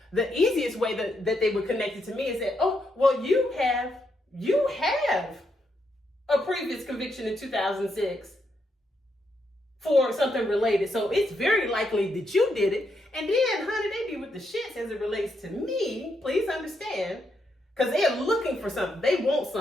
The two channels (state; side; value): normal; both; correlation 0.80